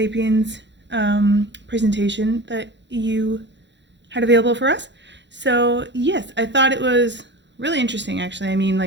presentation that you had available for us. So yes, I thought it was really interesting actually. I mean,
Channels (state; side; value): late; left; 0.52 ms